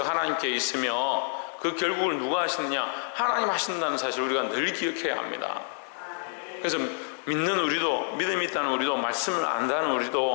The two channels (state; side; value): silent; right; 59 dB below the other